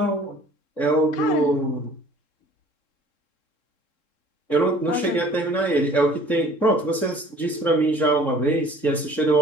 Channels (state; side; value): late; right; 3.7 ms